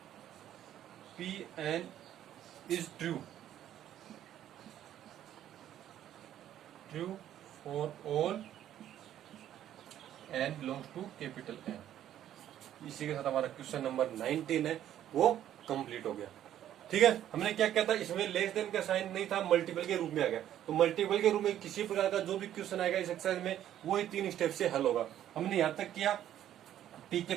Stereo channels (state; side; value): quieter; left; 11.4 dB